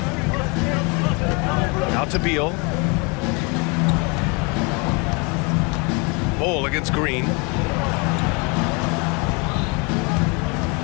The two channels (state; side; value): quieter; right; 30.4 dB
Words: Out to Beal. Bull against Green.